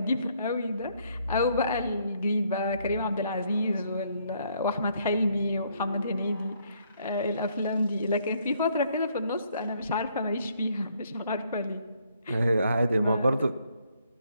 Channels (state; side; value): inverted; both; correlation -0.69